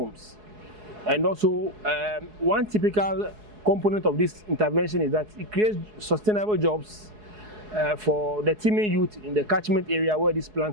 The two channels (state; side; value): late; left; 4.7 ms